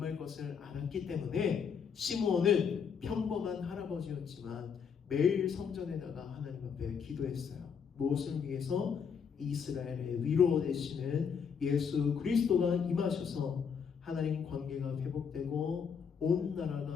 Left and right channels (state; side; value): quieter; right; 6.7 dB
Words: 것을 알았기 때문에 시므온은 평범한 할아버지였지만 매일 성전에 나가 하나님 앞에 기도했어요. 무엇을 위해서? 이스라엘의 위로 되시는 예수 그리스도가 임하셔서 하나님 관계가 회복되고 온